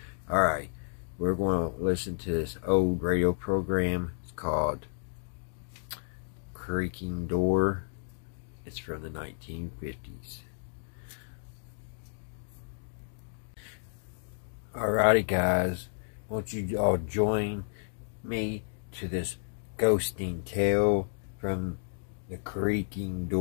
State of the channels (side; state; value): right; silent; digital silence